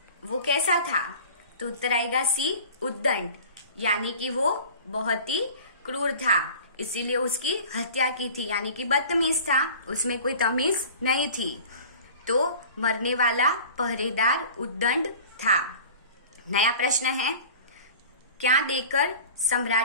वो कैसा था? तो उत्तर आएगा सी उद्दंड, यानी कि वो बहुत ही क्रूर था, इसीलिए उसकी हत्या की थी। यानी कि बदतमीज था, उसमें कोई तमीज नहीं थी। तो मरने वाला पहरेदार उद्दंड था। नया प्रश्न है, क्या देकर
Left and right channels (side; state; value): both; inverted; correlation -0.41